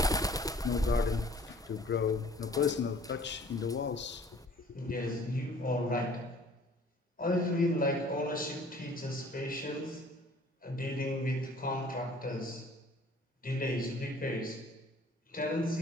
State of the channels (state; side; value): normal; both; correlation 0.53